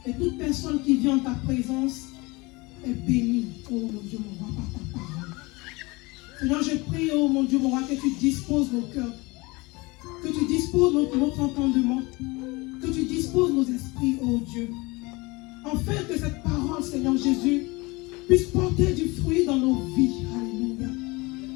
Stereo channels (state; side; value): quieter; right; 24.3 dB